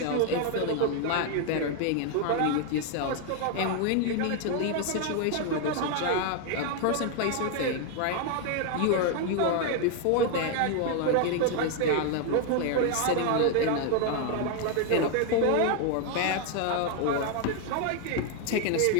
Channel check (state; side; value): different; both; correlation 0.01